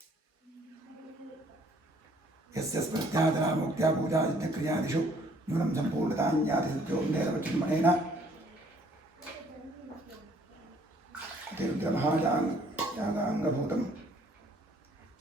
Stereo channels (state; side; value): normal; both; correlation 0.61